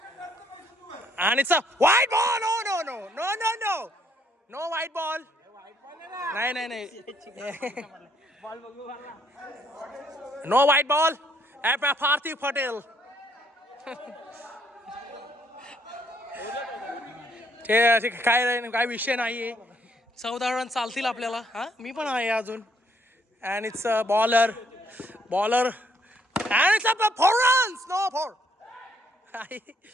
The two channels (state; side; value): normal; both; correlation 0.68